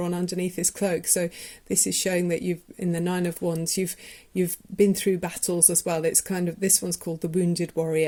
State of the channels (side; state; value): both; identical; correlation 1.00